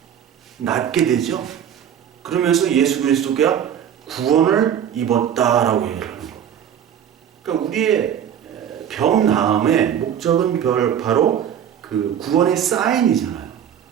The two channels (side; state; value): left; quieter; 9.2 dB